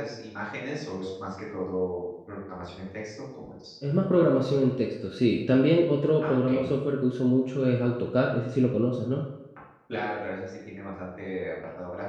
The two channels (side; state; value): both; identical; correlation 1.00